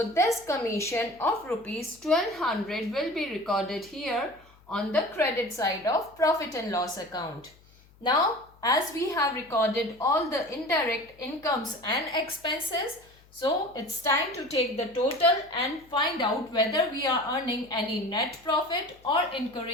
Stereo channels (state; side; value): noise; left; hum, 28 dB below the sound